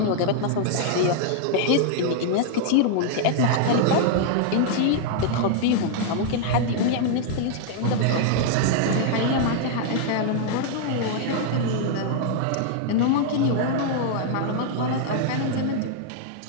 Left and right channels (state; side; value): different; both; correlation -0.01